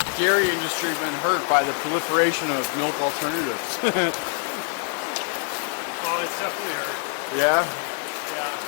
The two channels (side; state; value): right; quieter; 38.4 dB